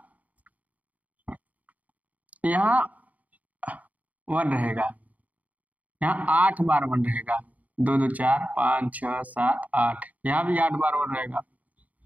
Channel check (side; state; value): left; late; 0.073 ms